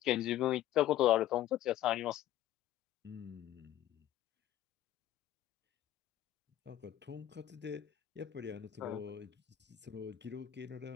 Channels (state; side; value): quieter; right; 12.9 dB